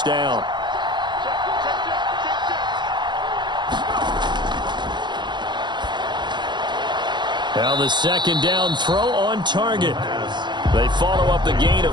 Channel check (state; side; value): late; left; 0.22 ms